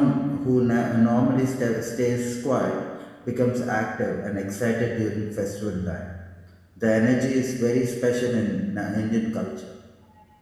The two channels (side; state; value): both; identical; correlation 1.00